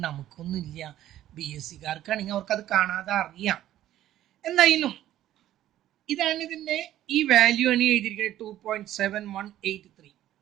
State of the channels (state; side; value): quieter; left; 13.0 dB